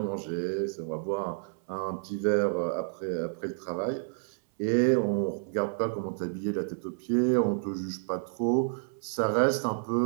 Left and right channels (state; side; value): silent; left; 58 dB below the other